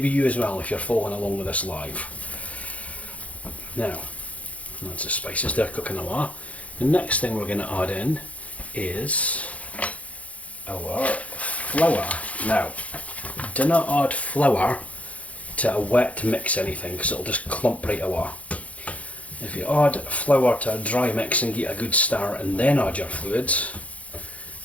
you as well if you're following along with this live. Now, that's the spices, they're cooking away. The next thing we're going to add in is our flour. Now, do not add flour to a wet mix anything, because it'll just clump right away. If you add flour to a dry mix and get a good stir and then add your fluids,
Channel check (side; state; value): right; late; 0.066 ms